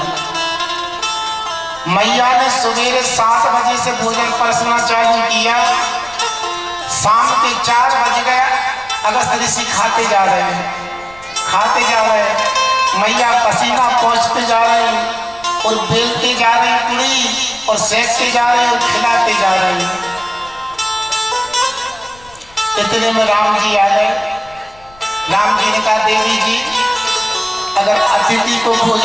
मैया ने सवेरे 7 बजे से भोजन परसना चालू किया, शाम के 4 बज गया, अगस्त ऋषि खाते जा रहे हैं, खाते जा रहे हैं। मैया पसीना पहुंचते जा रहे हैं और बेलते जा रहे हैं पूरी, और सेकते जा रहे हैं और खिलाते जा रहे हैं। इतने में राम जी आ गए। राम जी ने कहा देवी जी अगर अतिथि को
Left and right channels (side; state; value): left; noise; rumble, 26 dB below the sound